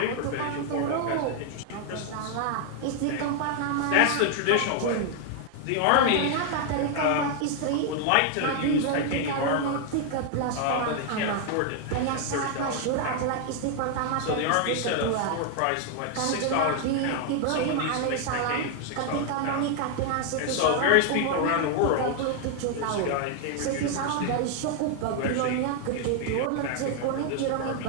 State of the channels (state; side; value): different; both; correlation 0.00